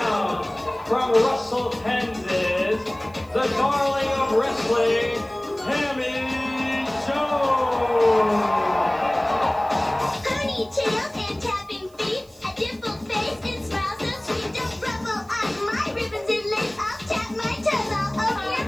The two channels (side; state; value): right; noise; hiss, 28 dB below the sound